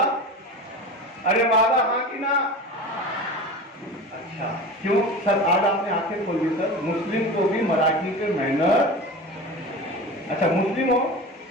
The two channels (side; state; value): both; normal; correlation 0.32